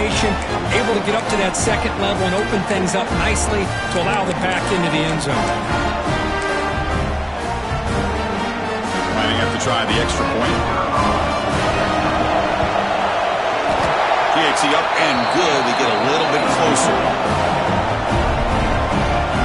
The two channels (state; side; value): identical; both; correlation 1.00